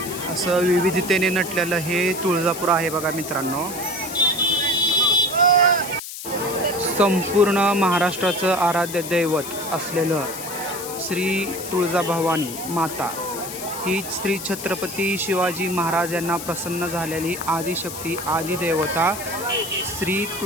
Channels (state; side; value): noise; left; hiss, 9 dB below the sound